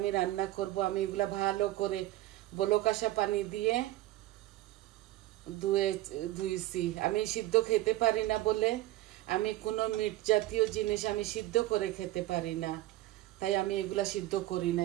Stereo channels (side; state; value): left; quieter; 16.4 dB